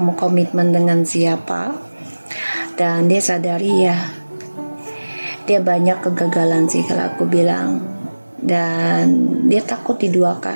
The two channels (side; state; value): both; inverted; correlation -1.00